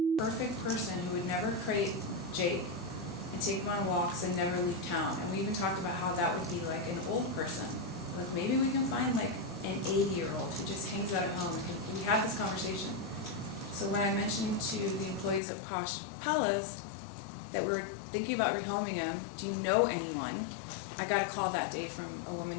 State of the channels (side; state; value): right; drops out; at 15.4 s